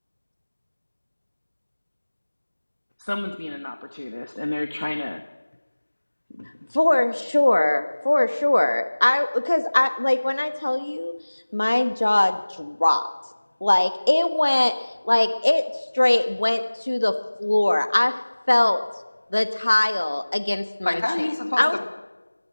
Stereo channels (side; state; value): both; inverted; correlation -1.00